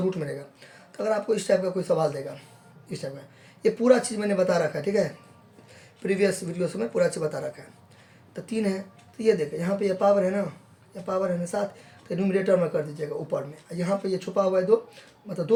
रूट में रहेगा। तो अगर आपको इस टाइप का कोई सवाल देगा, इस टाइप का, ये पूरा चीज़ मैंने बता रखा है, ठीक है, प्रीवियस वीडियो से मैं पूरा चीज़ बता रखा है। तो 3 है, तो ये देखें यहाँ पे ये पावर है ना, ये पावर है ना 7, तो न्यूमरेटर में कर दीजिएगा ऊपर में। यहाँ पे ये छुपा हुआ है 2, मतलब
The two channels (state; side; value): identical; both; correlation 1.00